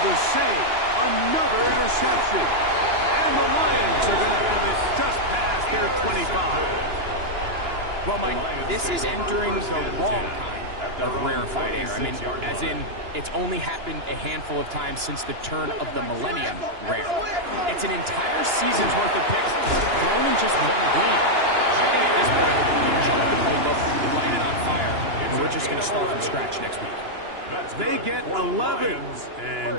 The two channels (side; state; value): left; late; 2.9 ms